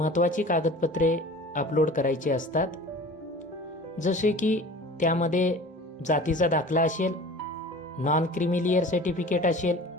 कागदपत्रे अपलोड करायची असतात. जसे की त्यामध्ये जातीचा दाखला असेल, नॉन क्रिमिलियर सर्टिफिकेट असेल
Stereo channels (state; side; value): normal; both; correlation 0.41